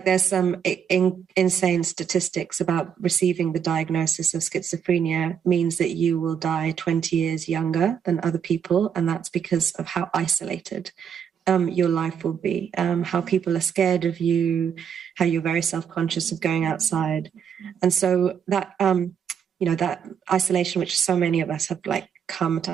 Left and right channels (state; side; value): quieter; left; 7.7 dB